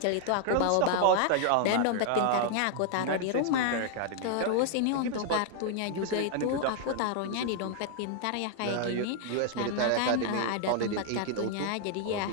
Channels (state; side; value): different; both; correlation 0.00